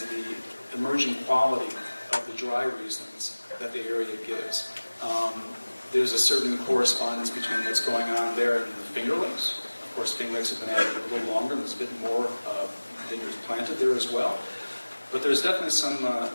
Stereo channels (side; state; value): both; inverted; correlation -1.00